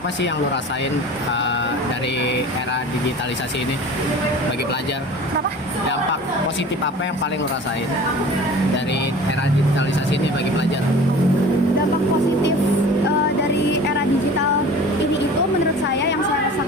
sih yang lo rasain dari era digitalisasi ini bagi pelajar? Kenapa? Dampak positif apa yang paling lo rasain dari era digitalisasi ini bagi pelajar? Dampak positif dari era digital ini itu menurut saya yang saya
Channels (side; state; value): both; normal; correlation 0.41